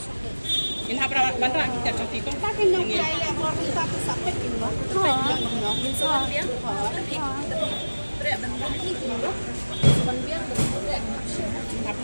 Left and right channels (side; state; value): both; inverted; correlation -1.00